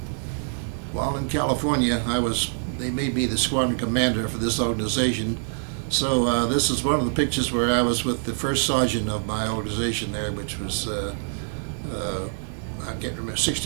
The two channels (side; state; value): left; silent; 58 dB below the other